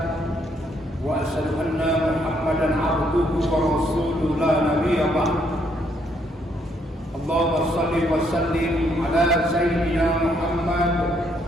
wa asyhadu anna Muhammadan abduhu wa rasuluhu la nabiyya ba'd. Allahumma shalli wa sallim ala sayyidina Muhammad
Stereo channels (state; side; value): normal; both; correlation 0.71